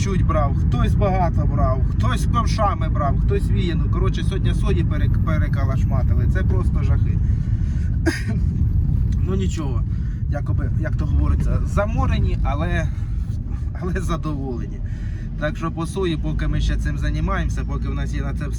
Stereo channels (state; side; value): identical; both; correlation 1.00